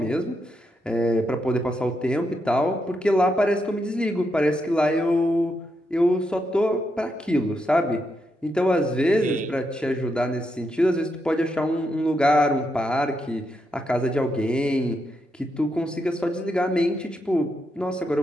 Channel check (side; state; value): both; normal; correlation 0.82